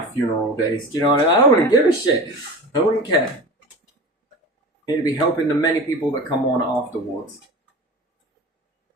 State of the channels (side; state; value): both; normal; correlation 0.33